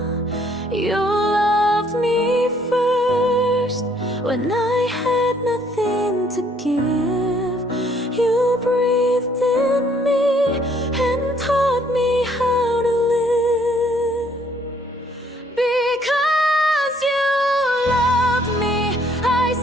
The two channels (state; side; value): normal; both; correlation 0.64